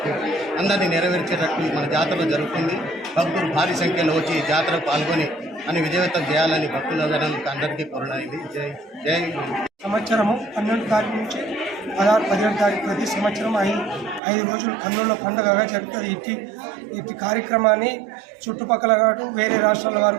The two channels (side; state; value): left; drops out; at 14.2 s